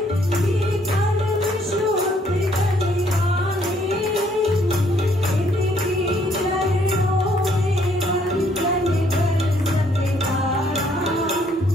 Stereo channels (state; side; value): normal; both; correlation 0.67